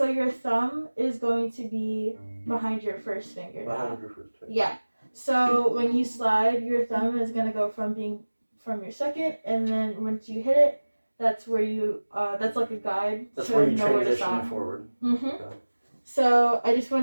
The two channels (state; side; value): inverted; both; correlation -1.00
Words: your thumb is going to be behind your first finger. Behind your first finger. Yeah. So when you slide, your thumb is gonna go from your second, and then once you hit it, that's where you that's like a guide. That's where you transition it forward. Mm-hmm. Okay. So I just